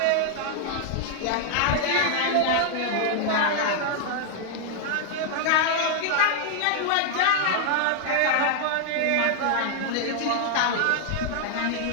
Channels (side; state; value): both; different; correlation 0.00